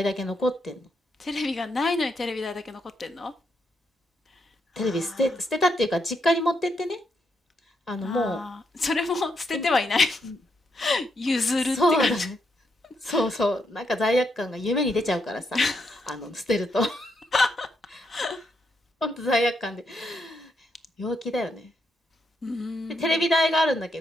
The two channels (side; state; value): both; normal; correlation 0.79